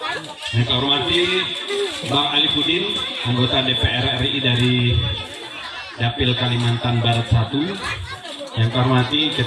Yang saya hormati Bang Alipudin, anggota DPR RI dari Dapil Kalimantan Barat 1. Yang saya hormati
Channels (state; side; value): identical; both; correlation 1.00